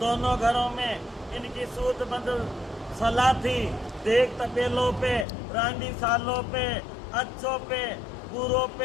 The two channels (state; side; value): drops out; right; at 5.2 s